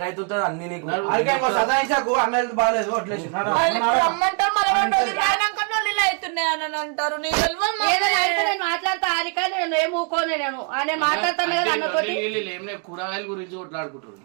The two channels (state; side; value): quieter; left; 36.6 dB